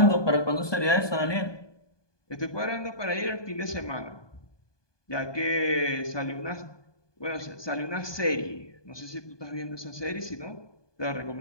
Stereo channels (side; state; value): right; late; 1.2 ms